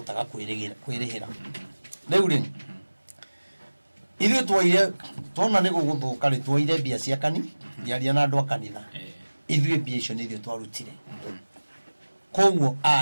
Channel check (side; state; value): both; inverted; correlation -1.00